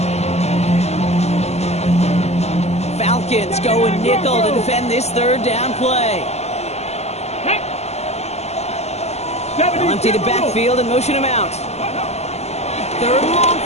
Falcons going nickel to defend this third down play. They'll empty the backfield and motion him out. Third and long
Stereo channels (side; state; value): right; late; 0.31 ms